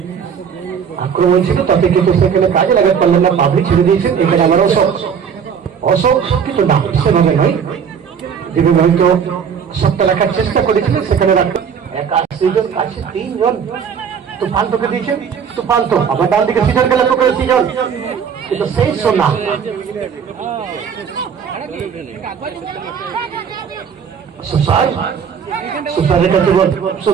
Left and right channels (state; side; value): quieter; left; 7.1 dB